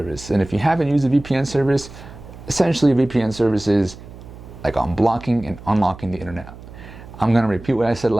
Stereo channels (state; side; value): noise; right; hum, 17 dB below the sound